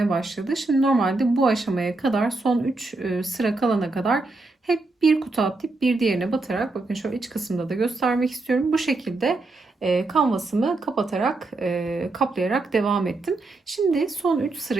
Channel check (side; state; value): left; quieter; 3.2 dB